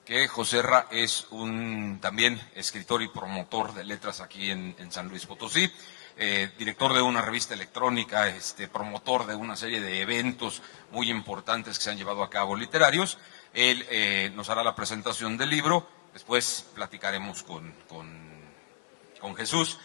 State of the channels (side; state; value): right; silent; digital silence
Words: que Joserra es un también escritor y promotor de letras aquí en San Luis Potosí, director de una revista electrónica, promotor de una serie de eventos muy importantes que se han llevado a cabo literarios. Él nos hará la presentación del libro. Después platicaremos con Jesús